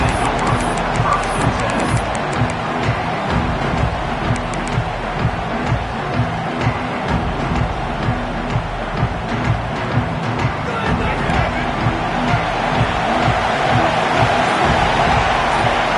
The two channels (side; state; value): both; identical; correlation 1.00